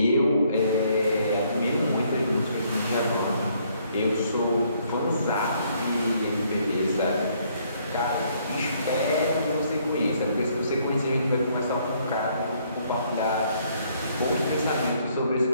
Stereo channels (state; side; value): inverted; both; correlation -0.67